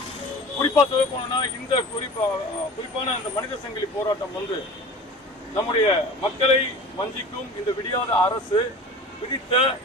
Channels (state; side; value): normal; both; correlation 0.38